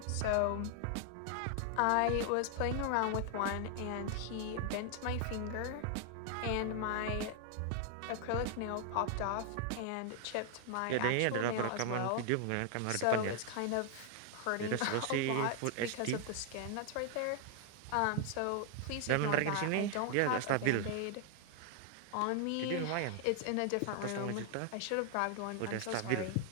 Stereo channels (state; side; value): different; both; correlation 0.00